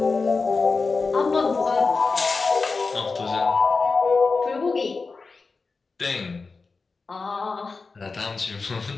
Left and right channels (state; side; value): quieter; right; 4.3 dB